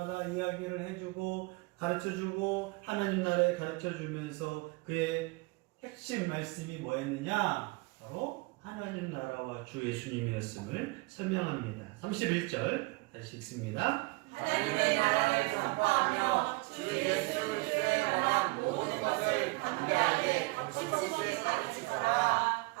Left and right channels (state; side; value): quieter; left; 25.1 dB